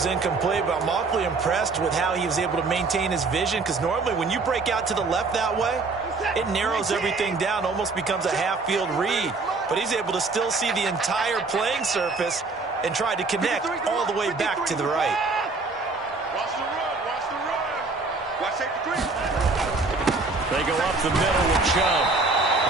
incomplete, but I'm awfully impressed with how he was able to maintain his vision, because normally when you break out to the left that way, it narrows everything down, almost becomes a half-field read. But he's able to still see the entire playing surface and try to connect all the way back to the right. Watch the run, watch the run. Watch safety green. They go up the middle with Chubb.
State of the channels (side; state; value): left; quieter; 3.9 dB